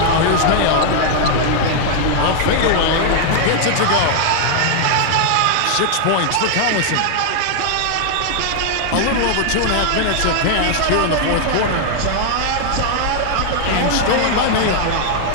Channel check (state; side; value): different; both; correlation 0.00